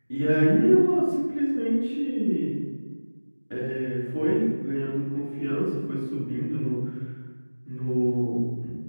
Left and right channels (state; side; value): inverted; both; correlation -1.00